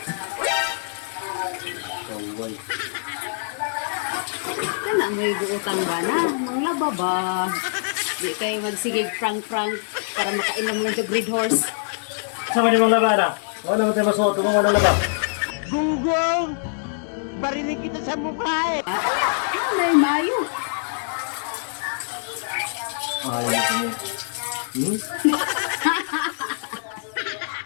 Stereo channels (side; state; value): right; silent; digital silence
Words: Kaway. Kana mo'y guutang ba na? Manglaba ba? Di kayo magsigig prank-prank para makainom lang yung Red Horse. Sama di mga laba na. Wala naman tayo masuot. Kung wala laba. Gunggong! Barinig kita sa mukha eh. Kana, nanay mayo. Ay, hmm?